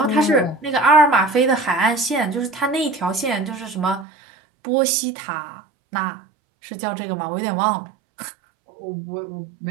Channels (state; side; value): drops out; left; at 4.0 s